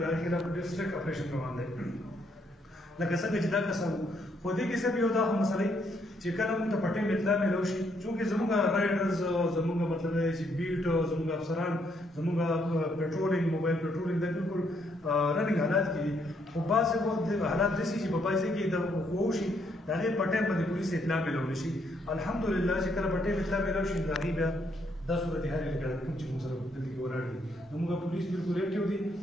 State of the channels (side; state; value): both; normal; correlation 0.72